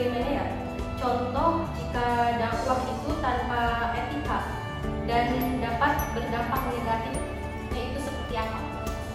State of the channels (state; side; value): identical; both; correlation 1.00